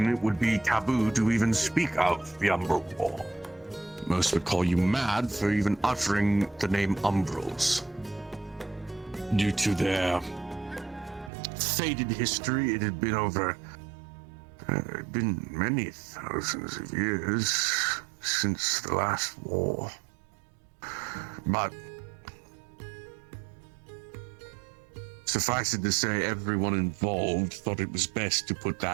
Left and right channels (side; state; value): left; drops out; at 11.3 s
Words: it would be taboo to even speak of the Umbral War. Most would call you mad for even uttering the name Umbrals. Due to their faded history, it had been been many thousands of years since the last war. But suffice it to say, everyone involved thought it was best to put